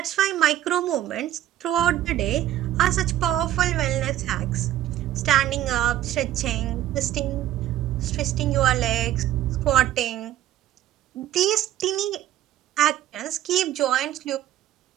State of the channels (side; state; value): left; quieter; 12.8 dB